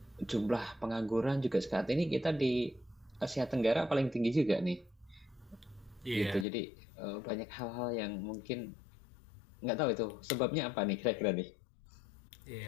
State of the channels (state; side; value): drops out; right; at 6.5 s